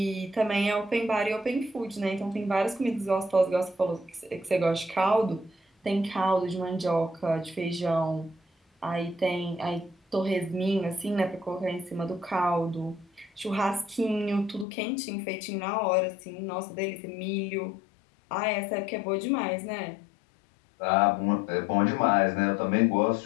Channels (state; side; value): drops out; right; at 14.7 s